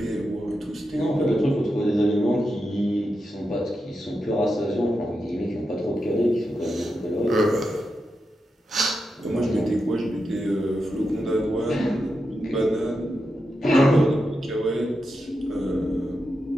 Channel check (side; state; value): both; normal; correlation 0.87